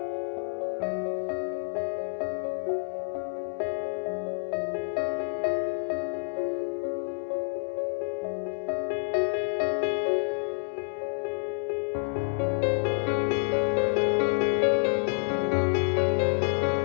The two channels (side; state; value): right; silent; 59 dB below the other